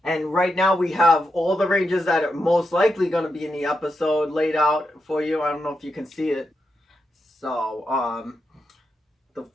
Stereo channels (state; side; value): normal; both; correlation 0.86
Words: And right now we have all the Rangers that are most likely going to be in the episode laid out for you. I don't know if you can see it. So, the